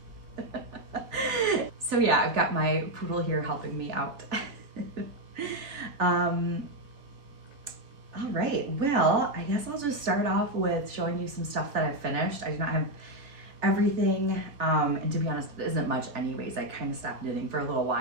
So yeah, I've got my poodle here helping me out. All right, well, I guess I'll just start off with showing you some stuff that I've finished. I do not have everything, and to be honest, it isn't much anyways. I kind of stopped knitting for a little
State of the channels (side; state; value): left; late; 3.3 ms